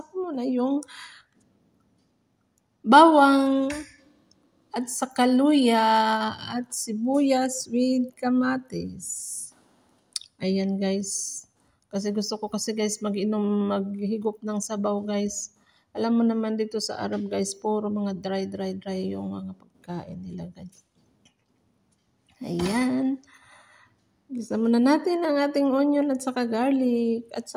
ko muna yung bawang at saka luya at sibuyas with kamatis. Ayan guys. Kasi gusto ko kasi guys maghigop ng sabaw guys. Alam mo naman dito sa Arab guys, puro mga dry yung mga pagkain nila guys. Ayan. Gisa muna natin ang ating onion at saka garlic at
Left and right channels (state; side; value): identical; both; correlation 1.00